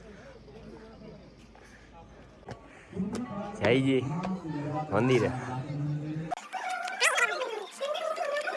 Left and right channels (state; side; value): identical; both; correlation 1.00